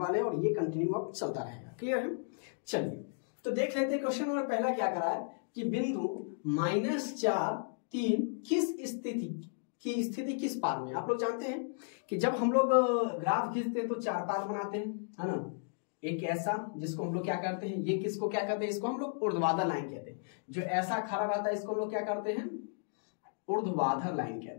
हैं और ये कंटिन्यू अब चलता रहेगा। क्लियर है? चलिए तो देख लेते हैं क्वेश्चन नंबर पहला क्या करा है कि बिंदु -4, 3 की स्थिति किस पाद में। आप लोग जानते हैं कि जब हम लोग ग्राफ खींचते हैं तो 4 पाद बनाते हैं, है ना। एक ऐसा जिसको हम लोग क्या करते हैं, ये किसको क्या कहते हैं, इसको हम लोग ऊर्ध्वाधर लाइन कहते हैं। जो ऐसा खड़ा रहता है इसको हम लोग क्या करते हैं, ऊर्ध्वाधर लाइन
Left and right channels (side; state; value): right; silent; digital silence